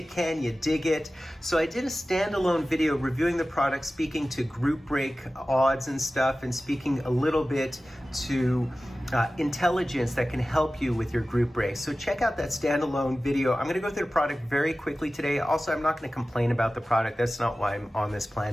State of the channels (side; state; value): both; normal; correlation 0.96